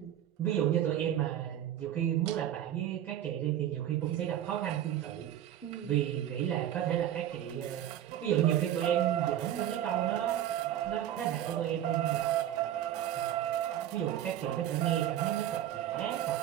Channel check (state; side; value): quieter; left; 11.5 dB